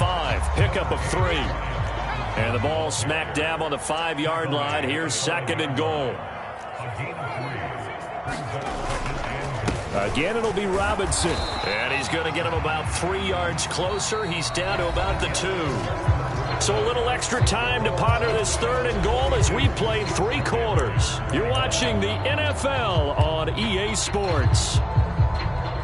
Pickup of 3. And the ball smack dab on the 5-yard line. Here's 2nd and goal. Again, it'll be Robinson. And he's going to get him about 3 yards closer. He's down to about the 2. So a little extra time to ponder this 3rd and goal as we play 3 quarters. You're watching the NFL on EA Sports.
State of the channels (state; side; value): identical; both; correlation 1.00